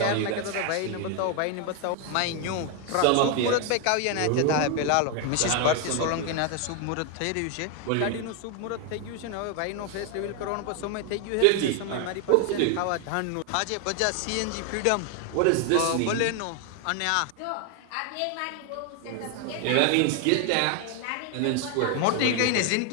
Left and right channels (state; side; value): different; both; correlation 0.01